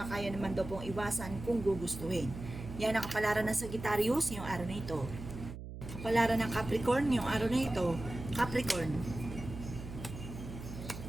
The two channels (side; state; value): right; noise; hum, 10 dB below the sound